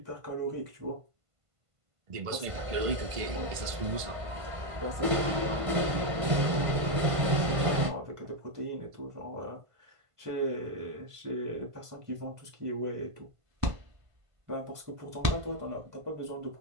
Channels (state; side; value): late; left; 1.5 ms